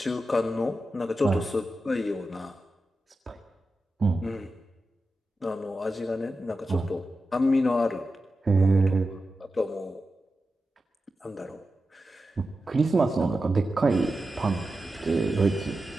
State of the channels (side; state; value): both; normal; correlation 0.91